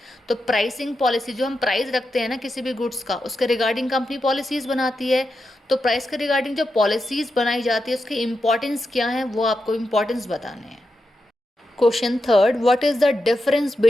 तो प्राइसिंग पॉलिसी, जो हम प्राइस रखते हैं ना किसी भी गुड्स का, उसके रिगार्डिंग कंपनी पॉलिसीज बनाती है। तो प्राइस के रिगार्डिंग जो पॉलिसीज बनाई जाती है उसकी इंपॉर्टेंस क्या है वो आपको इंपॉर्टेंस बताने हैं। Question third, what is the difference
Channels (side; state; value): both; normal; correlation 0.88